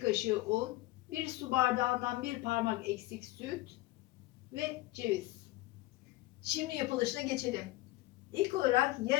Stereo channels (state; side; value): quieter; right; 18.4 dB